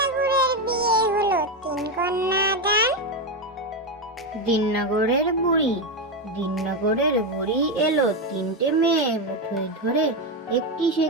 বিয়ে হলো 3 কন্যা দান। দিননগরের বুড়ি এলো 3টে মেয়ে মুঠোয় ধরে। একটি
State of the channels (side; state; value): both; normal; correlation 0.10